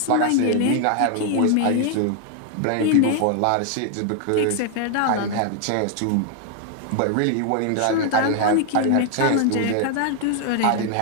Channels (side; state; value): both; different; correlation 0.00